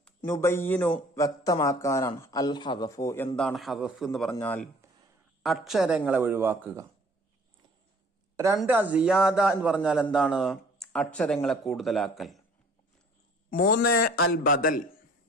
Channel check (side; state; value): both; normal; correlation 0.53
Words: നുബയ്യിനു വ്യക്തമാക്കാനാണ്. അൽ ഹദഫു, എന്താണ് ഹദഫ് എന്ന് പറഞ്ഞാൽ അക്ഷരങ്ങളെ ഒഴിവാക്കുക. 2 സിയാദ എന്ന് പറഞ്ഞാൽ എന്താണ്? അക്ഷരങ്ങളെ കൂടുതലാക്കൽ. 3 അൽ ബദൽ,